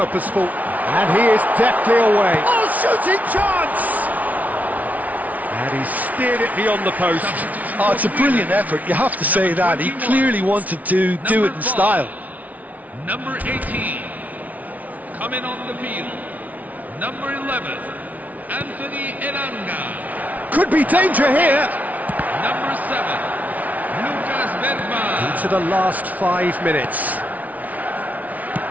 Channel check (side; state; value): left; late; 0.073 ms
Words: And he is deftly away. Oh, shooting chance! And he steered it beyond the post. Oh, it's a brilliant effort, you have to say that. He clearly wanted to do it in style. Number 18, coming on the field. Number 11, Anthony Elanga. Could be danger here. Number 7, Lucas Bergman. Into the last 5 minutes.